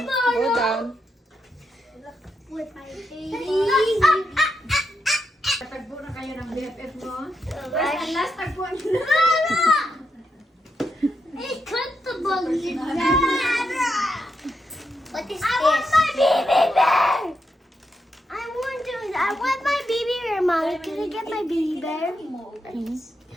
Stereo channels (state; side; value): normal; both; correlation 0.83